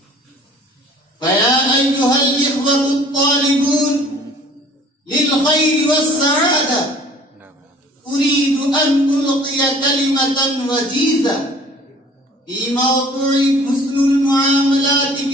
فيا أيها الإخوة الطالبون للخير والسعادة، أريد أن ألقي كلمة وجيزة في موضوع حسن المعاملات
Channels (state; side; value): normal; both; correlation 0.51